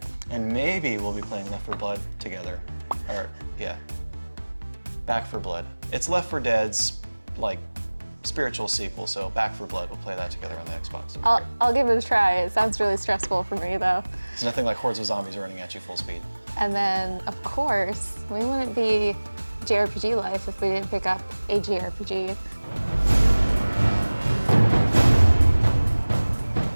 And maybe we'll be playing Left 4 Blood together. Or, yeah. Back 4 Blood. It's Left 4 Dead's, like, spiritual sequel, so Back 4 Blood, we'll play that together on the Xbox. I'll give it a try. It sounds really stressful for me, though. It's nothing like hordes of zombies running at you full speed. And then, of course, we wouldn't be JRPGLife if we didn't pick up a JRPG.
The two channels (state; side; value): inverted; both; correlation -1.00